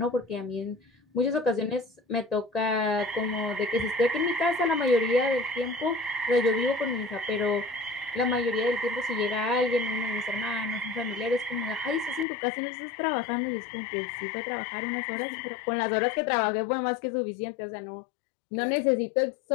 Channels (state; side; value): drops out; right; at 12.2 s